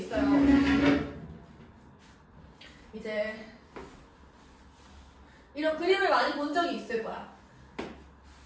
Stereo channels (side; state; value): both; identical; correlation 1.00